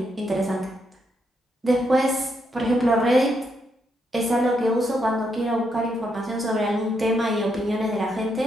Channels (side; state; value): both; normal; correlation 0.79